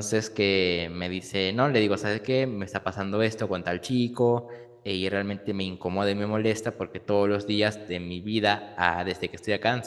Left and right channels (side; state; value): both; identical; correlation 1.00